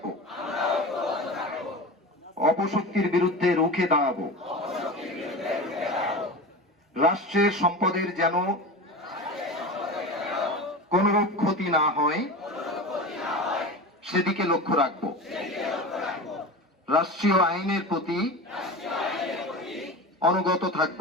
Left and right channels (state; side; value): normal; both; correlation 0.28